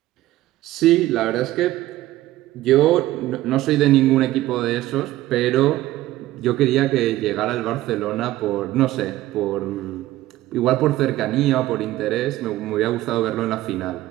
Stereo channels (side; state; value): left; quieter; 15.8 dB